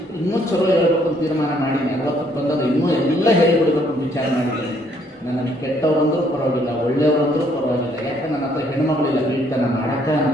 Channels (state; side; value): normal; both; correlation 0.67